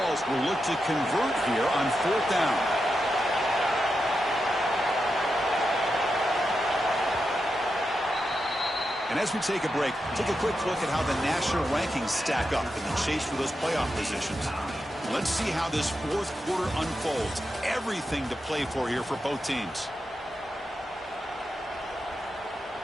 will look to convert here on 4th down. And as we take a break, take a quick look at how the national rankings stack up in the chase for those playoff positions. Let's see how this 4th quarter unfolds. Everything to play for here for both teams.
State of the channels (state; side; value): normal; both; correlation 0.87